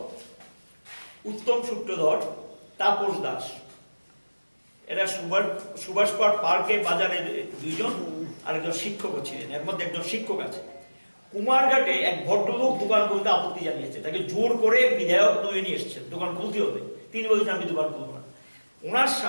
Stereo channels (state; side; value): inverted; both; correlation -1.00